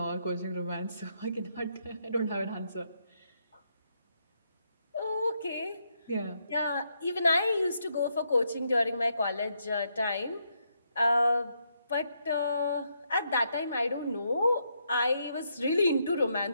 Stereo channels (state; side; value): inverted; both; correlation -0.77